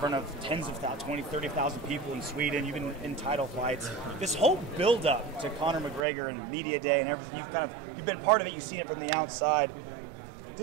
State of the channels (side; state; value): left; drops out; at 6.1 s